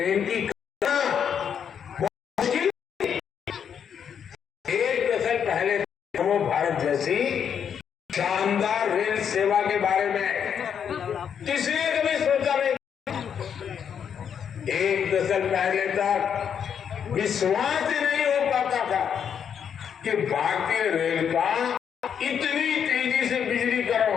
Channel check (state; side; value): quieter; right; 7.9 dB